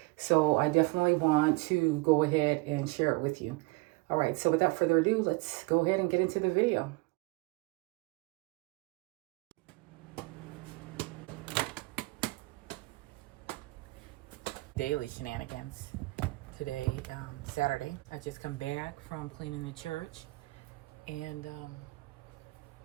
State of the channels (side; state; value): left; quieter; 24.1 dB